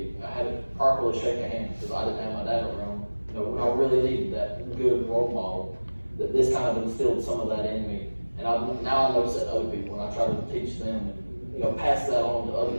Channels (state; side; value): inverted; both; correlation -1.00